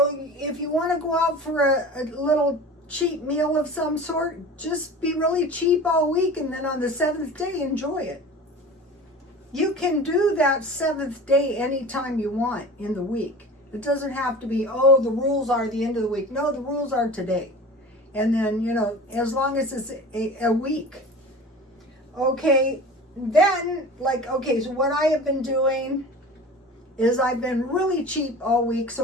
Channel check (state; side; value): normal; both; correlation 0.37